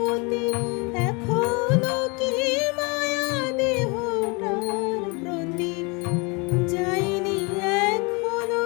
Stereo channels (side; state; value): right; quieter; 29.9 dB